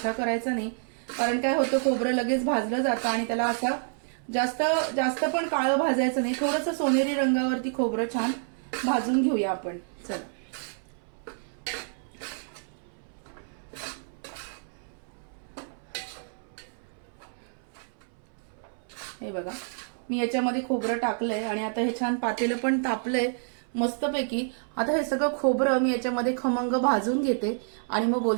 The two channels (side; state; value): left; silent; 59 dB below the other